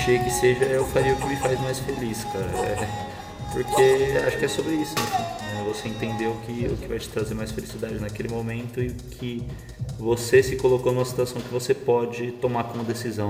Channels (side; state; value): both; identical; correlation 1.00